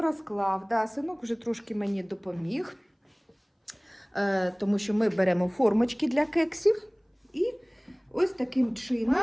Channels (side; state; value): both; identical; correlation 1.00